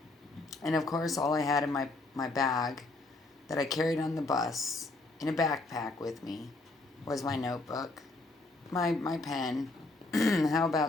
And of course, all I had in my bag that I carried on the bus in a backpack with me was my notebook, my pen, how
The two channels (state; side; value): quieter; right; 3.1 dB